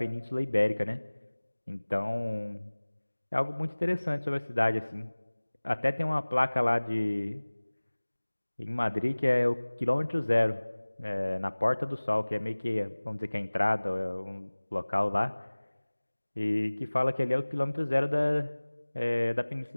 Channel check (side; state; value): both; inverted; correlation -1.00